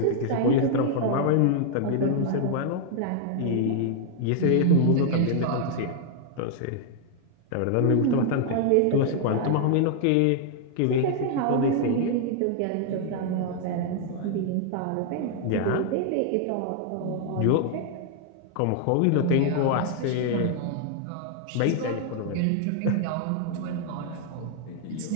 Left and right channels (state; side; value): different; both; correlation 0.00